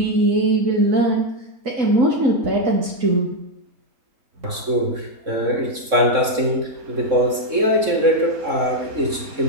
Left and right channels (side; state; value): left; late; 3.6 ms